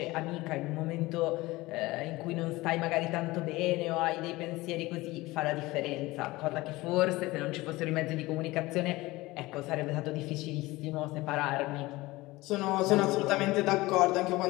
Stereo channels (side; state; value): right; quieter; 20.1 dB